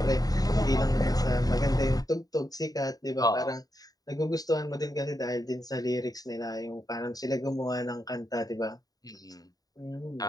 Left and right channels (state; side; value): late; right; 0.18 ms